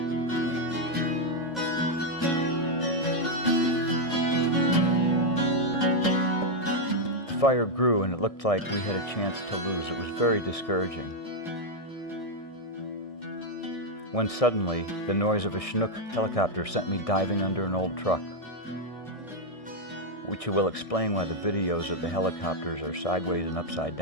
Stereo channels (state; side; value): late; right; 1.6 ms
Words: The fire grew and it looked like we had a chance to lose. It was very discouraging. When suddenly, the noise of a Chinook helicopter sent me diving under an old truck, which will explain why the videos of the helicopters are sideways and upside